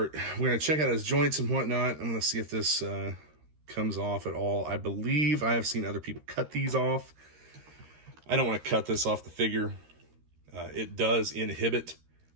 check out his joints and whatnot. I'm gonna see if this comes off at all. I believe I have seen other people cut these off. I don't want to cut this off the figure. It does inhibit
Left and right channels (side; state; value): left; late; 13 ms